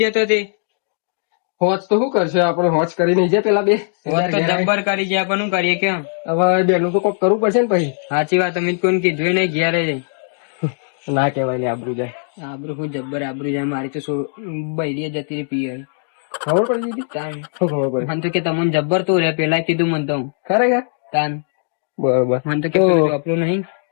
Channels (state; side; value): silent; right; 62 dB below the other